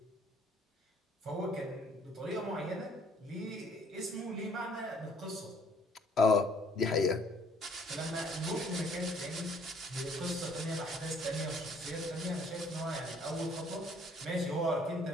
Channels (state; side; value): normal; both; correlation 0.60